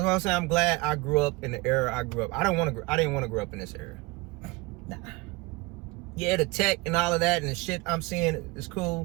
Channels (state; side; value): quieter; left; 23.7 dB